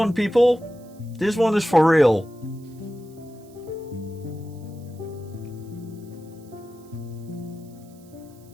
people. This one is for real.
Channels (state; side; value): noise; right; hiss, 28 dB below the sound